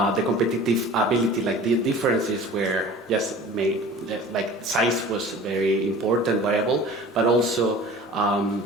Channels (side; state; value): both; normal; correlation 0.42